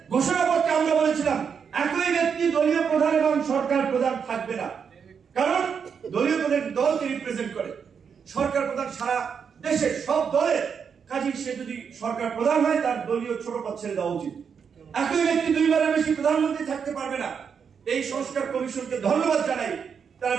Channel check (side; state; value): left; quieter; 6.7 dB